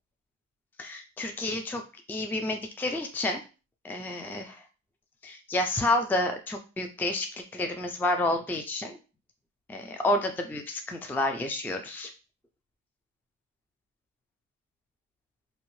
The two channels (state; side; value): normal; both; correlation 0.41